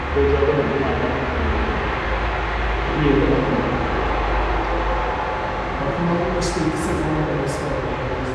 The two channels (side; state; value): both; identical; correlation 1.00